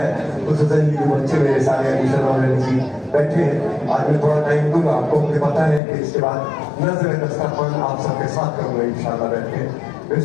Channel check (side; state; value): right; drops out; at 5.8 s